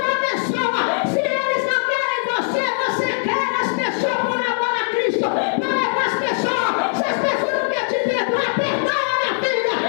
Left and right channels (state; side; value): silent; right; 58 dB below the other